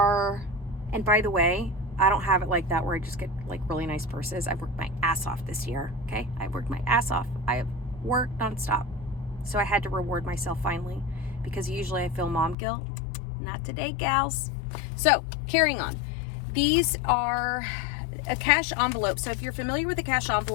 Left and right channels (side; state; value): right; drops out; at 12.6 s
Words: and by the way, I don't have it like that where I just get like really nice purses. I've worked my ass off this year, okay? I've worked my ass off. I have worked nonstop. So I had to reward myself finally, because usually I feel mom guilt. Not today, gals. So carrying on. These are a cash envelope. So if you're familiar with a cash